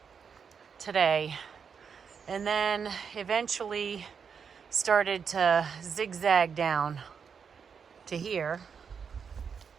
today, and then eventually started to zigzag down to here,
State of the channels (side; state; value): left; quieter; 6.5 dB